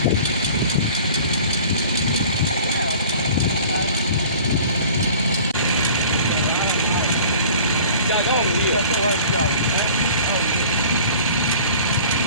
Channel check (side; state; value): both; inverted; correlation -0.45